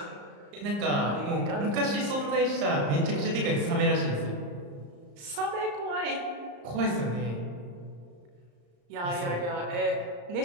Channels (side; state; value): left; late; 34 ms